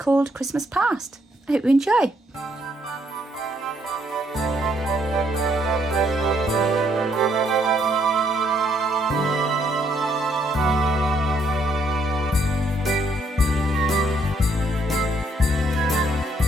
Christmas Past. I hope you enjoy.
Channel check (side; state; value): both; normal; correlation 0.70